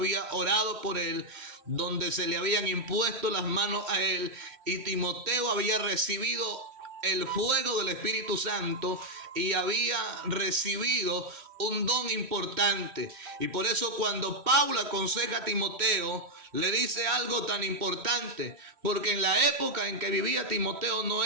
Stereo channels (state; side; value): late; left; 3.1 ms